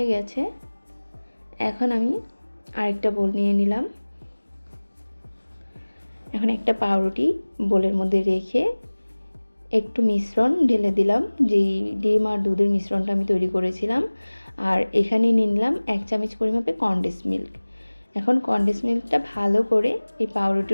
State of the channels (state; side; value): inverted; both; correlation -1.00